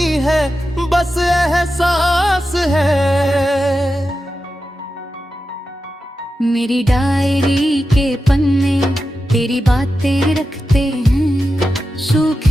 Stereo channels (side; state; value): both; normal; correlation 0.91